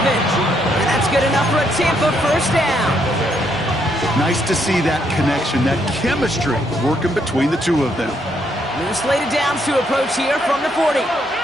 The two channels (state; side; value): normal; both; correlation 0.74